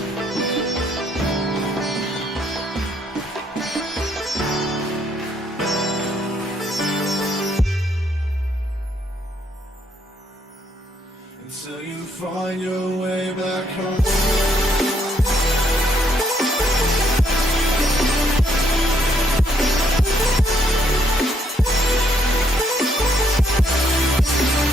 Until you find your way back home.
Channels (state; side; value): normal; both; correlation 0.70